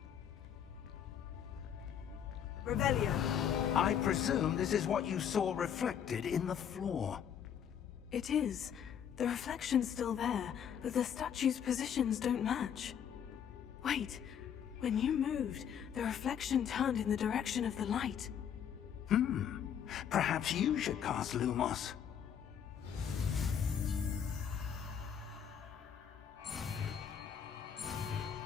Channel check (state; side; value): quieter; right; 8.5 dB